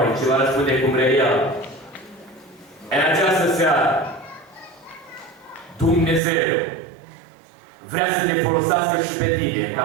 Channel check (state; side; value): drops out; left; at 6.2 s